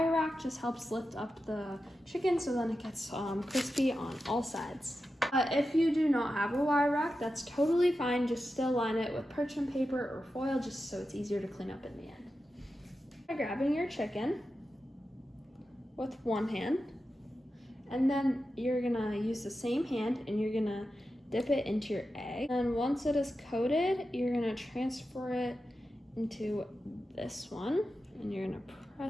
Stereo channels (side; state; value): both; normal; correlation 0.91